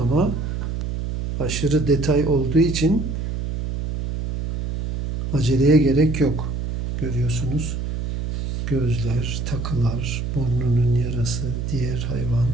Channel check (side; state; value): right; noise; hum, 3 dB below the sound